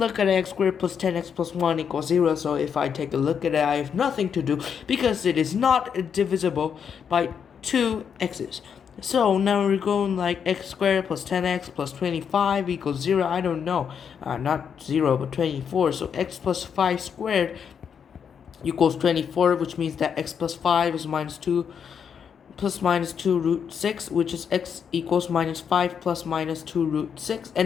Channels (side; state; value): right; quieter; 7.3 dB